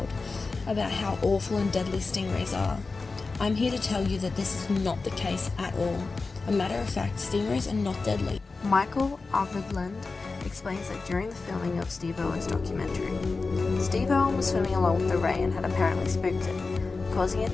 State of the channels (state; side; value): quieter; right; 4.0 dB